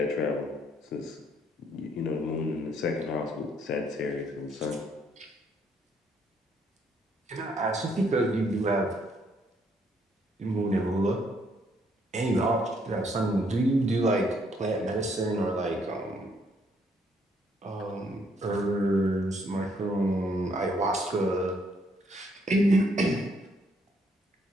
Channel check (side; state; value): both; normal; correlation 0.69